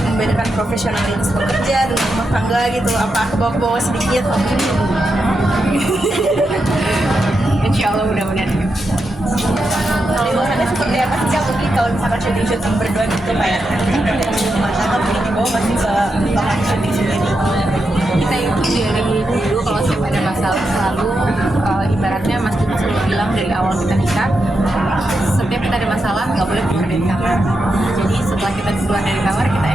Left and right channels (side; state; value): both; normal; correlation 0.86